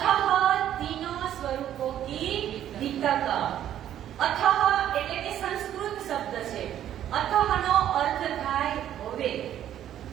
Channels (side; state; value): left; quieter; 11.2 dB